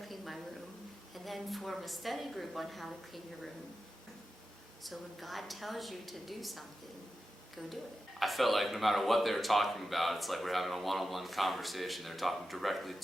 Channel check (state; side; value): normal; both; correlation 0.92